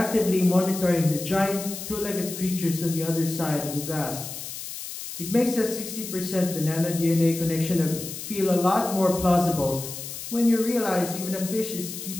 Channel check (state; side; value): noise; left; hiss, 9 dB below the sound